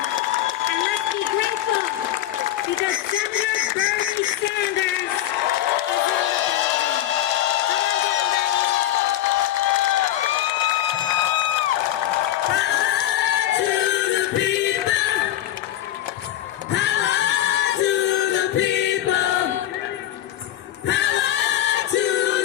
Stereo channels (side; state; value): right; quieter; 12.8 dB